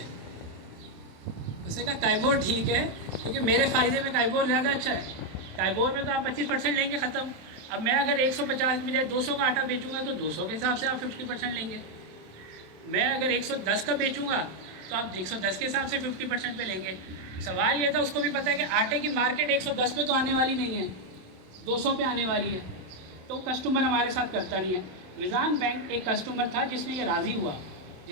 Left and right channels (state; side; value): late; left; 27 ms